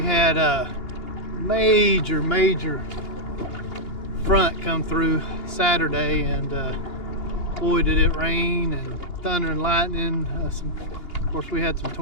had a major front come through Saturday, and boy did it rain and thunder and lightning. Of course, we had some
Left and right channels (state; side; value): late; right; 2.8 ms